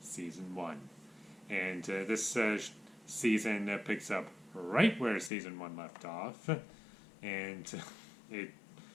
Season 1. And this season picks up right where Season 1 left off. And it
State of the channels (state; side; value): drops out; right; at 5.3 s